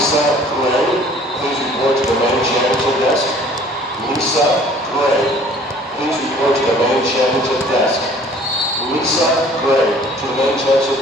Lisa Gray, please report to the main championship desk. Lisa Gray, please report to the main championship desk. Lisa Gray, to the main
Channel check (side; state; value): both; normal; correlation 0.53